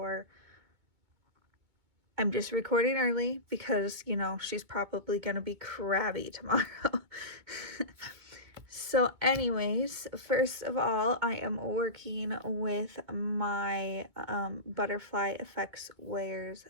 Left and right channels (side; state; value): left; late; 2.2 ms